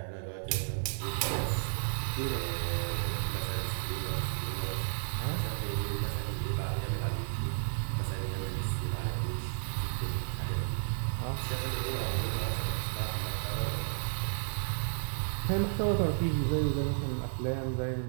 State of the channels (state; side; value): silent; left; digital silence